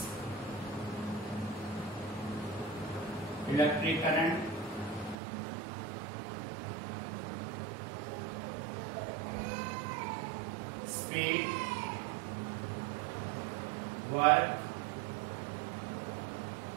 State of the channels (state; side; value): drops out; left; at 5.2 s